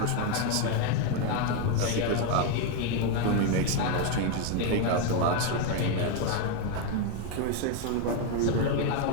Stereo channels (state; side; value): different; both; correlation 0.01